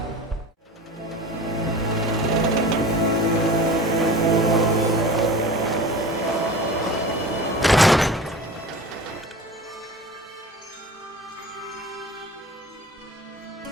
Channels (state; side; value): normal; both; correlation 0.36